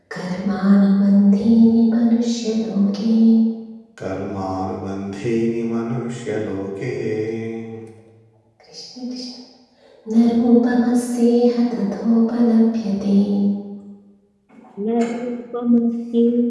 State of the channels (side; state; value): both; identical; correlation 1.00